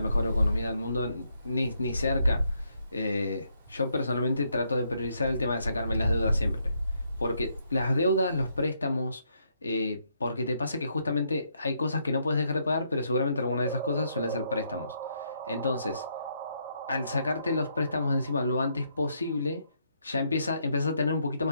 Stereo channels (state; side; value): inverted; both; correlation -0.75